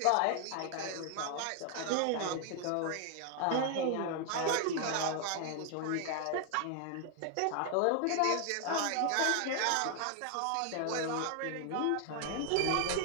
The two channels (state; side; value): different; both; correlation 0.00